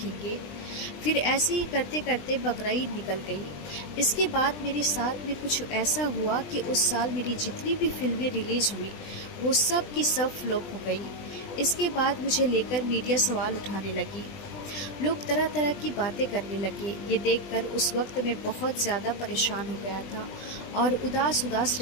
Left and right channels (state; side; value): late; right; 20 ms